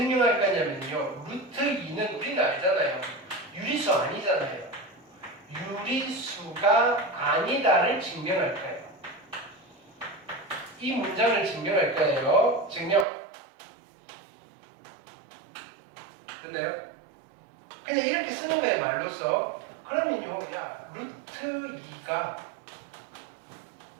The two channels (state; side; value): drops out; left; at 13.1 s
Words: 거냐면요. 루트 2는 우리는 알잖아요. 유리수 아니잖아요. 유리수가 아니다를 증명할 거예요. 이 문장을 증명할 거예요. 증명. 됐나요? 그냥 이렇게 쓰는 거예요, 말로써. 그러면요, 야, 루트 2가